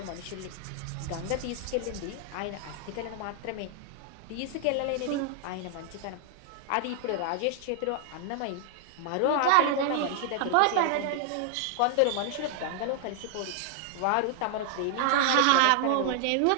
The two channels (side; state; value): both; different; correlation 0.00